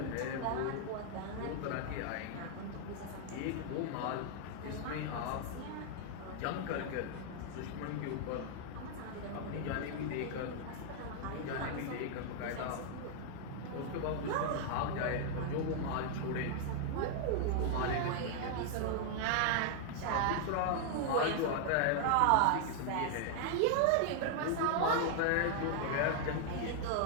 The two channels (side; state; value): both; different; correlation 0.00